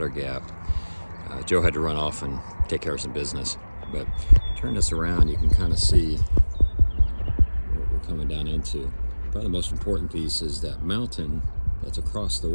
Gap. Joe had to run off and take care of some business, but turn this around, you can kind of see what we're coming down into. Probably the most important piece is that mountain that's across the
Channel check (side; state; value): both; inverted; correlation -1.00